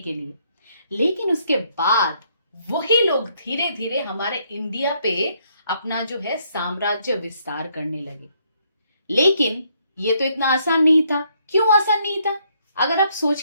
लिए। लेकिन उसके बाद वही लोग धीरे धीरे हमारे इंडिया पे अपना जो है साम्राज्य विस्तार करने लगे। लेकिन ये तो इतना आसान नहीं था। क्यों आसान नहीं था? अगर आप सोच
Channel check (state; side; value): inverted; both; correlation -0.71